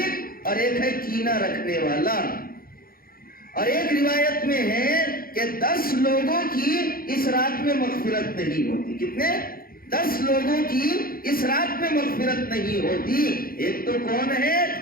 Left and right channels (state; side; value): late; right; 0.42 ms